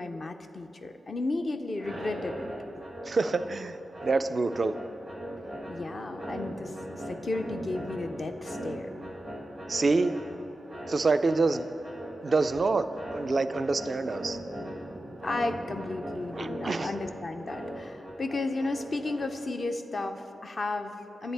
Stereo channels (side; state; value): both; normal; correlation 0.91